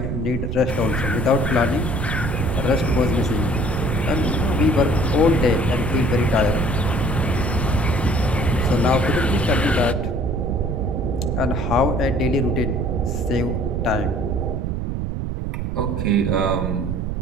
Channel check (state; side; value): noise; right; rumble, 2 dB below the sound